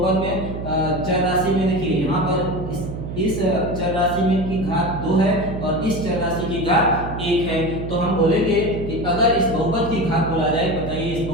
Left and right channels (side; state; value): right; noise; hum, 7 dB below the sound